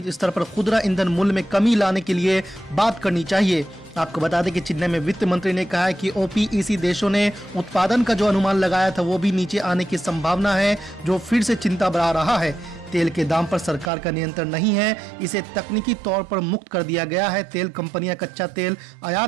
स्तर पर खुदरा ईंधन मूल्य में कमी लाने के लिए बात करनी चाहिए। आपको बता दें कि चेन्नई में वित्त मंत्री ने कहा है कि ओपीईसी देशों ने उत्पादन का जो अनुमान लगाया था वो भी नीचे आने की संभावना है, जो फिर से चिंता बढ़ा रहा है। तेल के दाम पर सरकार का नियंत्रण नहीं है, इसे तकनीकी तौर पर मुक्त कर दिया गया है। तेल कंपनियां कच्चा तेल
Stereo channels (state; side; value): drops out; left; at 13.9 s